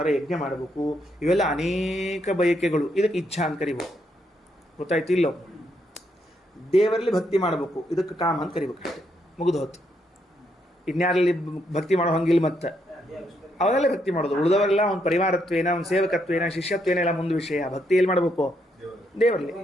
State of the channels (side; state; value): both; normal; correlation 0.77